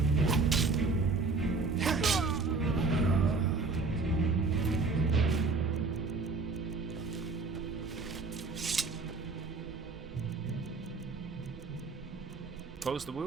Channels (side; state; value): left; quieter; 4.0 dB